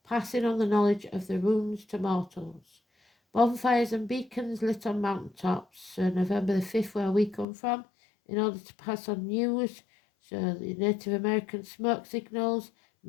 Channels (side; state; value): right; drops out; at 7.5 s